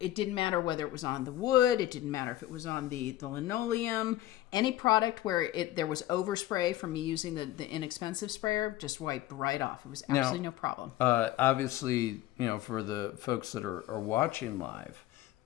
didn't matter whether it was on the wood. It didn't matter if it was on the linoleum. Any product where there was overspray from me using the inexpensive sprayer just wiped right off. It was absolutely no problem. Obviously, for the folks that are watching live,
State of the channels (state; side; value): quieter; right; 14.7 dB